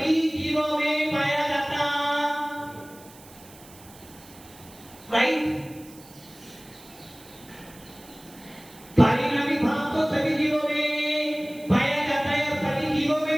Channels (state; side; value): noise; right; hiss, 22 dB below the sound